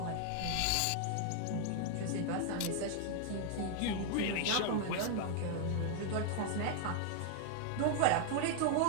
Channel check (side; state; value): both; different; correlation 0.00